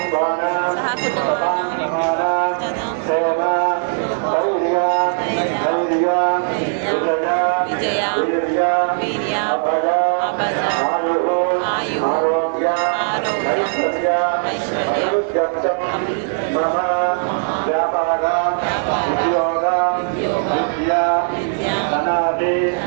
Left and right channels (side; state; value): left; silent; digital silence